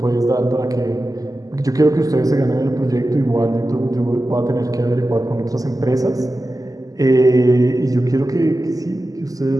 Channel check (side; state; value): left; late; 0.17 ms